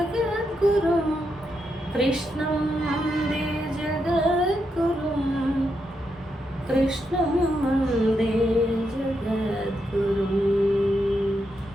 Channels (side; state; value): both; normal; correlation 0.82